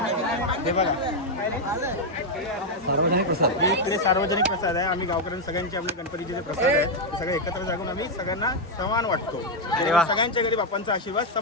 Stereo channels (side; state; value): both; normal; correlation 0.01